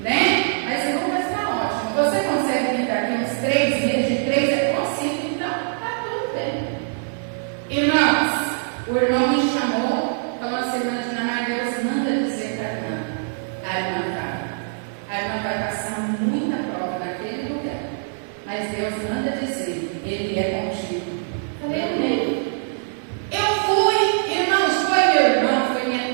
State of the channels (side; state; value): left; silent; 62 dB below the other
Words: mas Deus manda dizer, Ele é contigo. Falei, amém. Eu fui, irmãos, foi meu irmão, foi minha